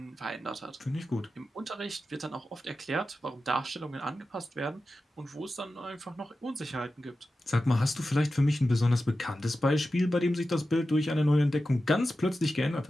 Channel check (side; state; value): both; normal; correlation 0.92